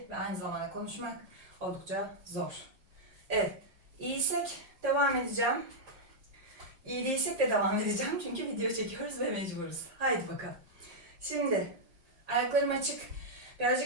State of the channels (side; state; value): left; late; 5.5 ms